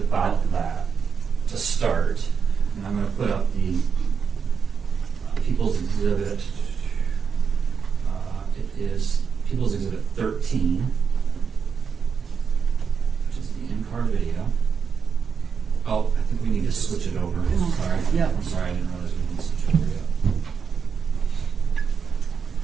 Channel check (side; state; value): left; quieter; 6.3 dB